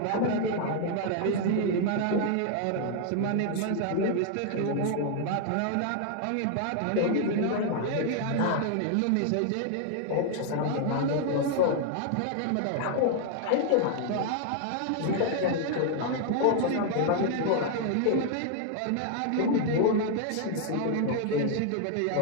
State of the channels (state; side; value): different; both; correlation 0.00